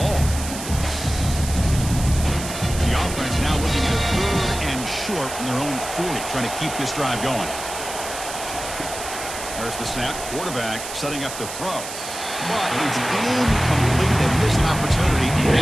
The offense now looking at 3rd and short from their own 40, trying to keep this drive going. There's the snap. Quarterback setting up the throw. But it's incomplete. They miss an opportunity.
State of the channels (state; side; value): noise; right; hiss, 9 dB below the sound